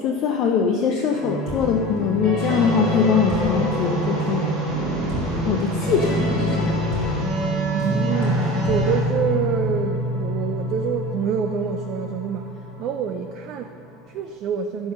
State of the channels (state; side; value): normal; both; correlation 0.35